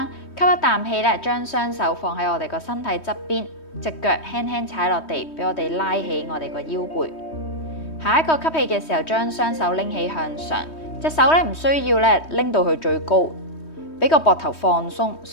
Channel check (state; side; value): late; right; 3.2 ms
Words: 吸一啖氣咧，將雙手放喺我哋個身體側邊，隻腳輕輕踩落地，俾我哋拉起我哋個腰背。下一個吸氣嘅時候，將雙手拎起向上，隻手咧唔需要咧拎到去最高，俾個膊頭放鬆，